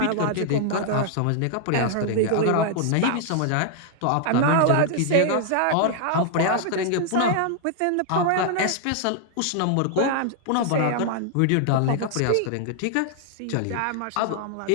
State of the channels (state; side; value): different; both; correlation 0.00